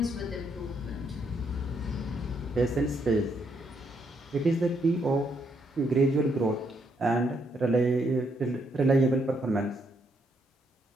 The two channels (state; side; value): normal; both; correlation 0.75